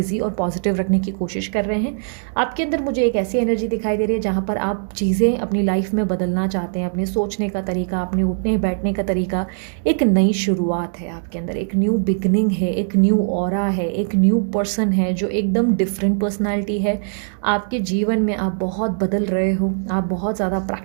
और पॉजिटिव रखने की कोशिश कर रहे हैं। आपके अंदर मुझे एक ऐसी एनर्जी दिखाई दे रही है जहाँ पर आप चीज़ें अपनी लाइफ में बदलना चाहते हैं, अपने सोचने का तरीका, अपने उठने बैठने का तरीका। एक नई शुरुआत है आपके अंदर, एक न्यू बिगनिंग है, एक न्यू ऑरा है, एक न्यू पर्सन है जो एकदम डिफरेंट पर्सनैलिटी पर्सनालिटी है। आपके जीवन में आप बहुत बदल रहे हो, आप बहुत ज़्यादा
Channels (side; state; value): left; silent; digital silence